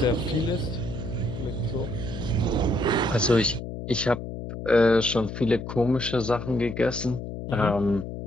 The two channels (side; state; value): left; noise; hum, 8 dB below the sound